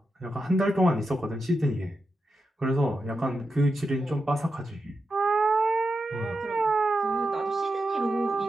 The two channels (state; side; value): normal; both; correlation 0.88